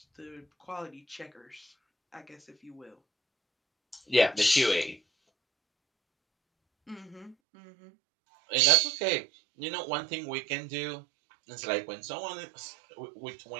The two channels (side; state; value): left; drops out; at 7.4 s